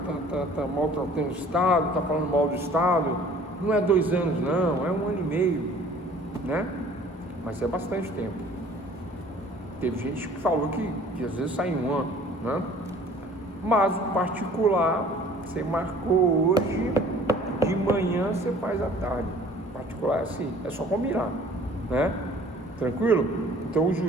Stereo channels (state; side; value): normal; both; correlation 0.51